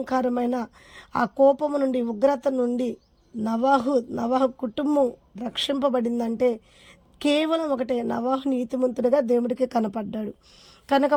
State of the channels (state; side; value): identical; both; correlation 1.00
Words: ఆ కోపము నుండి, ఉగ్రత నుండి నవాహు కుటుంబం రక్షింపబడిందంటే కేవలం ఒకటే, నవాహు నీతిమంతుడిగా దేవుడికి కనపడ్డాడు. కనుక